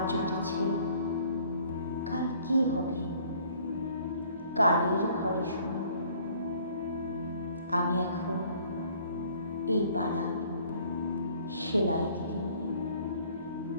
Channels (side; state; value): both; inverted; correlation -0.57